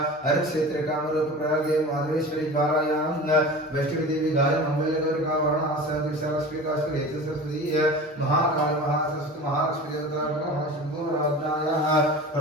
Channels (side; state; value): both; normal; correlation 0.35